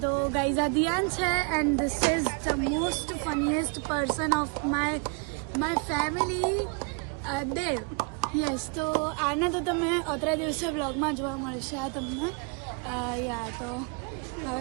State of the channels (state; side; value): quieter; left; 33.8 dB